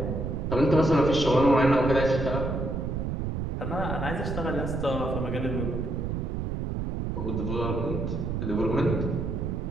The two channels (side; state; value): right; noise; rumble, 2 dB below the sound